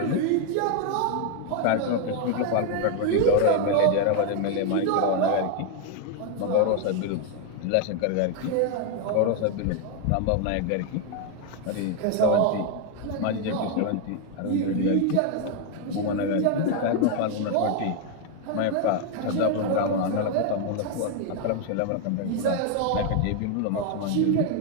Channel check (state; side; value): different; both; correlation 0.01